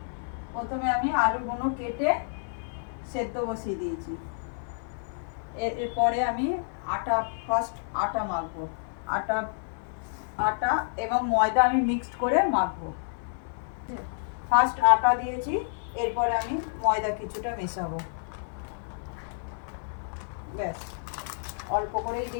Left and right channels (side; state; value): right; silent; 58 dB below the other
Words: প্রথমে আমি আলুগুলো কেটে সেদ্ধ বসিয়ে দিয়েছি। এরপরে আমি ফার্স্ট আটা মাখবো। আটা এবং ময়দা আমি মিক্সড করে মাখবো। ফার্স্ট আটা দিয়েছি, এরপরে আমি ময়দা কিছুটা মেশাবো। ব্যাস, অল্প করেই